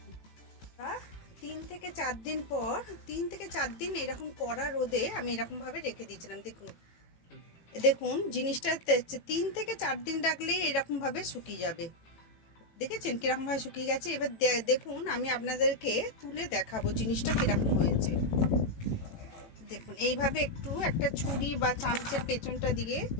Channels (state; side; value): late; right; 18 ms